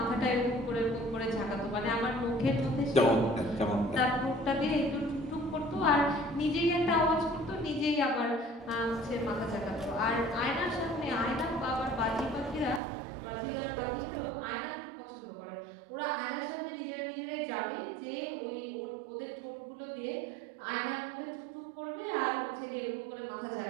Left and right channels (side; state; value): left; drops out; at 12.8 s